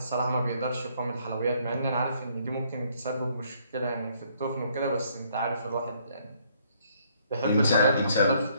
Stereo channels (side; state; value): both; inverted; correlation -0.67